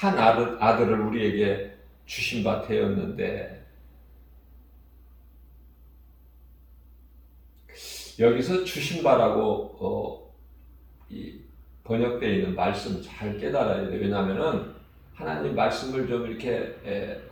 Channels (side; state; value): both; identical; correlation 1.00